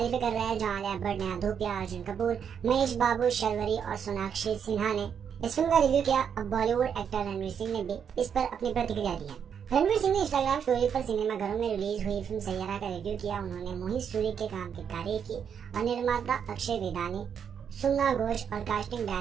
कर रहे हैं, जहां आलिया भट्ट, नेहा धूपिया, अर्जुन कपूर, महेश बाबू, शर्वरी और सोनाक्षी सिन्हा ने इस फिल्म का रिव्यू किया। अब बॉलीवुड एक्टर रणवीर सिंह ने भी इस पर अपनी प्रतिक्रिया दी है। रणवीर सिंह ने इंस्टाग्राम स्टोरी पर सिनेमाघरों में रिलीज हुई फिल्म सैयारा का रिव्यू किया। उन्होंने मोहित सूरी के काम की तारीफ की और निर्माता अक्षय वेदानी, सुमना घोष और कास्टिंग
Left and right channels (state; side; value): quieter; left; 7.7 dB